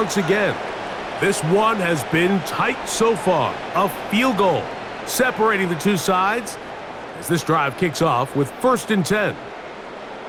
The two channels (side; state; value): both; identical; correlation 1.00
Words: again. This one has been tight so far. A field goal separating the two sides as this drive kicks off with 1st and 10.